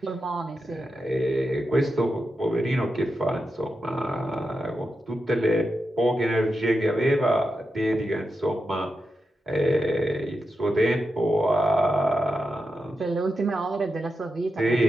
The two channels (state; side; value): normal; both; correlation 0.88